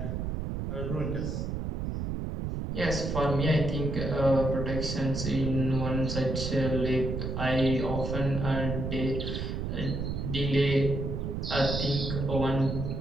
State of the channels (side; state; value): right; noise; rumble, 3 dB below the sound